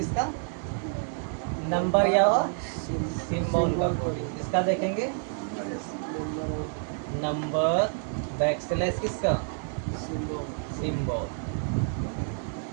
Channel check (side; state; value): left; silent; 57 dB below the other